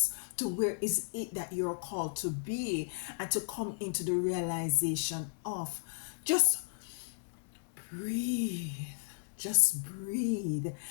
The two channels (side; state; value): right; silent; digital silence